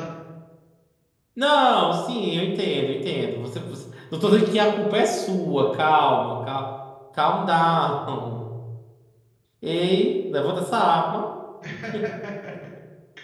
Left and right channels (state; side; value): identical; both; correlation 1.00